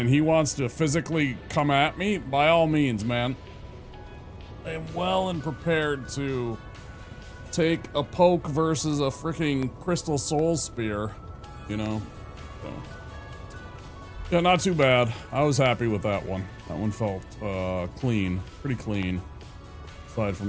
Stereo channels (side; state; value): both; identical; correlation 1.00